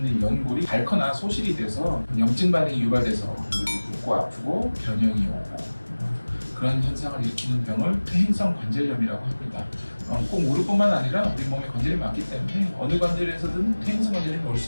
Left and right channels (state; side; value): inverted; both; correlation -1.00